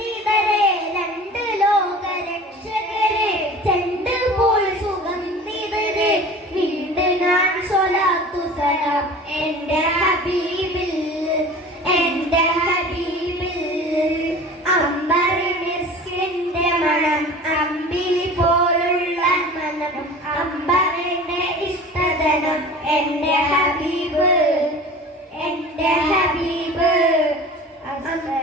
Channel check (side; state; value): both; normal; correlation 0.39